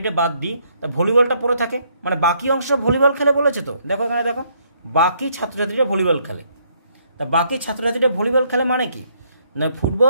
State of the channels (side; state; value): both; inverted; correlation -0.70